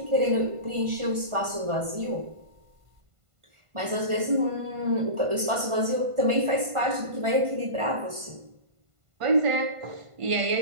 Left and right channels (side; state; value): left; late; 1.5 ms